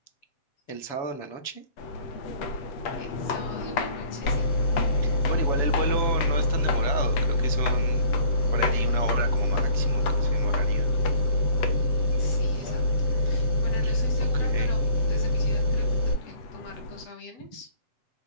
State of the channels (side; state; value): right; late; 7.1 ms